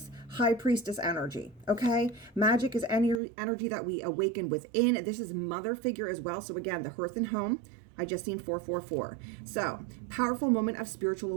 High Priestess energy, okay? Magic is any energy that we awaken within. This is mother figure as well. So again, the hearth and home. I just seen 444. So, powerful moment of spiritual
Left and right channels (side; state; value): left; drops out; at 3.2 s